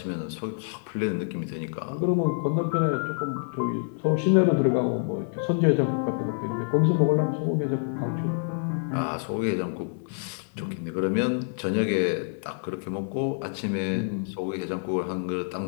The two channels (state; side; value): silent; right; digital silence